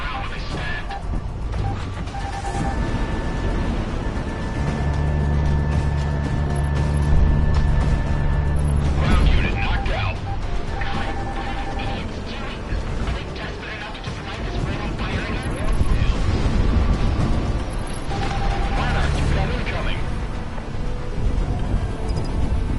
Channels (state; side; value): identical; both; correlation 1.00